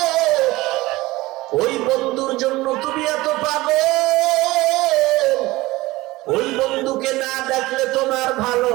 ওই বন্ধুর জন্য তুমি এত পাগল। ওই বন্ধুকে না দেখলে তোমার ভালো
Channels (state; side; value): quieter; left; 19.5 dB